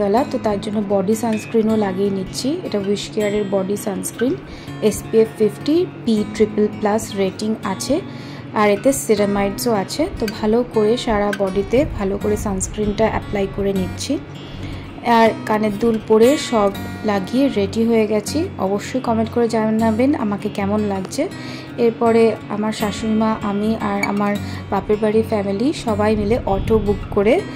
বেলা, তো তার জন্য বডি সানস্ক্রিনও লাগিয়ে নিচ্ছি। এটা উইশ কেয়ারের body sunscreen, SPF 50 PPP+ rating আছে, আর এতে সিরামাইডসও আছে। তো ভালো করে সারা বডিতে ভালো করে সানস্ক্রিনটা অ্যাপ্লাই করে নিচ্ছি। আর কানের দুল পরে সব লাগিয়ে রেডি হয়ে গেছি। অবশ্যই কমেন্ট করে জানাবেন আমাকে কেমন লাগছে। এরপরে আমার শাশুড়িমা, আমি আর আমার বাপের বাড়ির ফ্যামিলি সবাই মিলে অটো বুক করে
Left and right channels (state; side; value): identical; both; correlation 1.00